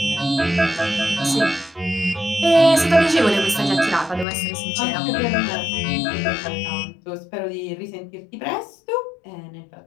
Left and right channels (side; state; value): right; drops out; at 4.2 s